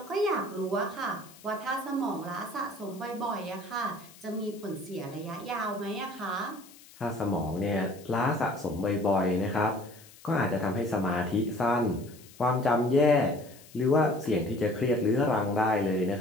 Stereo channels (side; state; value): left; noise; hiss, 22 dB below the sound